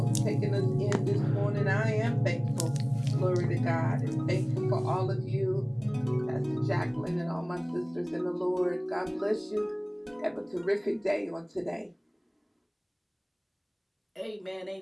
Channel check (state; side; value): identical; both; correlation 1.00